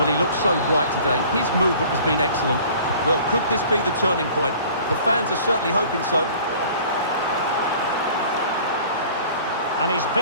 he looks so bright today. His movement has been excellent. Well, could this be the turning point? The fans are certainly hoping so. And he's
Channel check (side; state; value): both; inverted; correlation -0.48